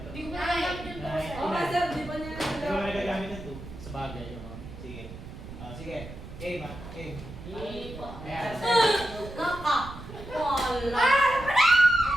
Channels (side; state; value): right; noise; rumble, 13 dB below the sound